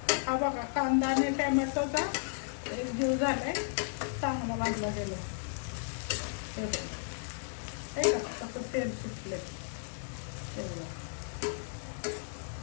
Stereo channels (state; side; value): silent; right; digital silence